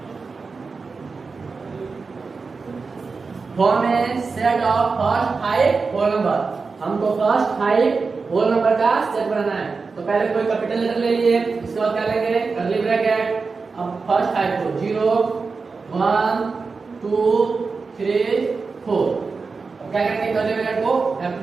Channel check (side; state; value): left; quieter; 4.5 dB